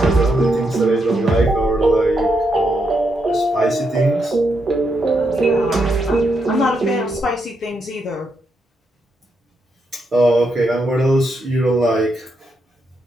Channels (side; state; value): both; normal; correlation 0.81